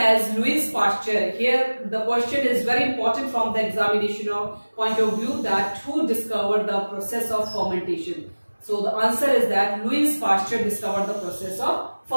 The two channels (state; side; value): inverted; both; correlation -1.00